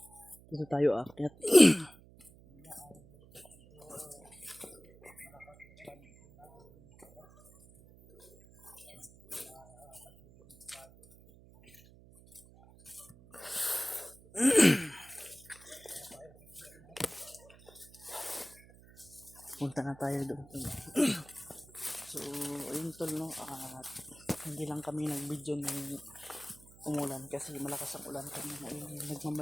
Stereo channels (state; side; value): noise; right; hum, 23 dB below the sound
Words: dito tayo aakyat. Punta na tayo doon. So ayun tol no, at hindi lang kami nag-video ng umulan kasi malakas ang ulan kami.